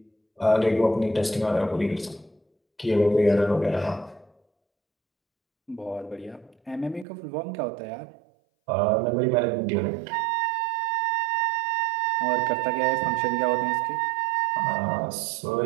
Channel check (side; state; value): left; drops out; at 7.1 s